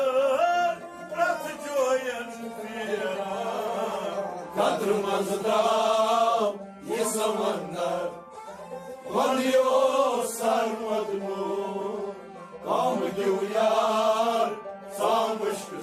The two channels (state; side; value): identical; both; correlation 1.00